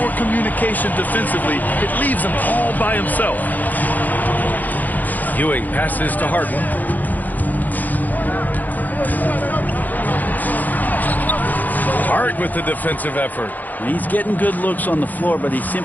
communication defensively, it leaves him all by himself. Ewing passes to Harden. Hart with the defensive effort. He's getting good looks on the floor, but he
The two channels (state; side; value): late; right; 0.083 ms